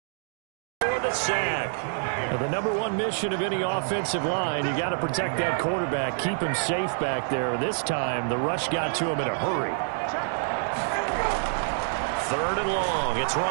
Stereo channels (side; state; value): left; silent; digital silence